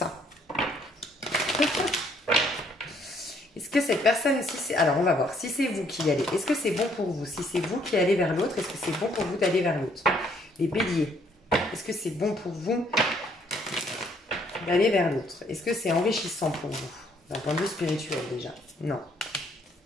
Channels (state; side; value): normal; both; correlation 0.66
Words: Est-ce que cette personne, alors on va voir, si c'est vous qui y allez, est-ce que c'est bon pour vous? Si c'est vous qui allez vers l'autre, est-ce que c'est bon pour vous d'aller vers l'autre? Les béliers, est-ce que c'est bon pour vous d'aller vers l'autre? Est-ce que c'est enrichissant pour vous? D'un point de vue spirituel déjà. Non.